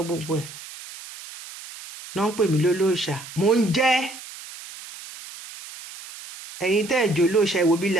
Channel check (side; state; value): right; noise; hiss, 15 dB below the sound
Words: gbogbo ẹ̀ náà ń pè mí lólóòṣà, mò ń jẹ́. ẹ̀yin tẹ́ ẹ̀ jẹ́ olóòṣà, ẹ wo bí ilé